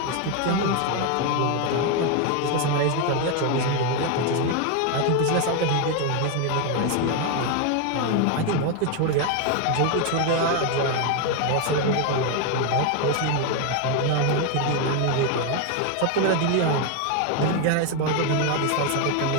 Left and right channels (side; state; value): both; different; correlation 0.01